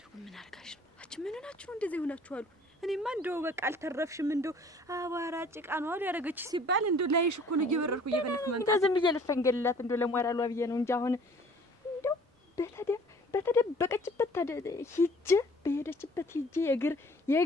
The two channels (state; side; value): normal; both; correlation 0.53